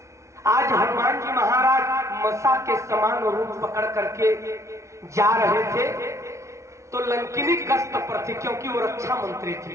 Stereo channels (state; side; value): late; left; 0.14 ms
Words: आज हनुमान जी महाराज मसा के समान रूप पकड़ करके जा रहे थे तो लंकिनी गश्त पर थी, क्योंकि वो रक्षा मंत्री थी,